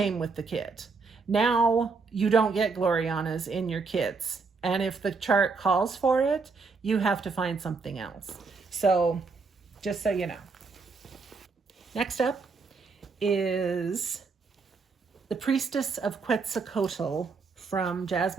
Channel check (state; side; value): quieter; left; 4.5 dB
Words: with the kit. Now you don't get Glorianas in your kits. And if the chart calls for it, you have to find something else. So just so you know. Next up is the Priestess of Quetzalcoatl from